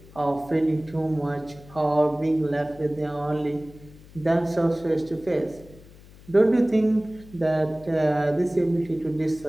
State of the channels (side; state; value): left; noise; hum, 22 dB below the sound